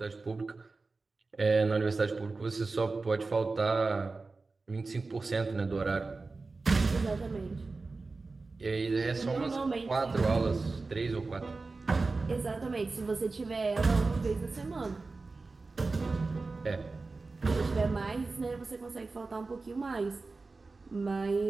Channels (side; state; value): left; quieter; 3.8 dB